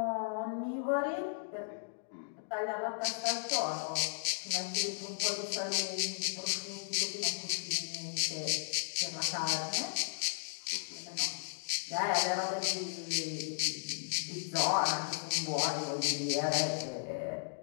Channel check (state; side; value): silent; right; digital silence